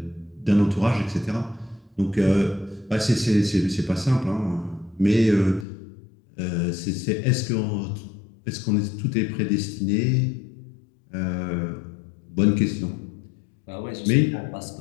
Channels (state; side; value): drops out; right; at 5.7 s